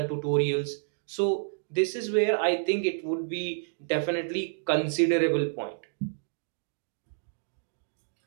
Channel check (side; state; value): left; silent; digital silence